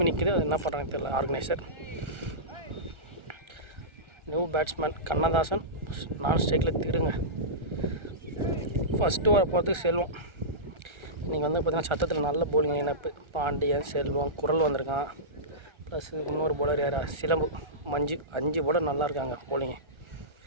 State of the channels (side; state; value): left; late; 1.3 ms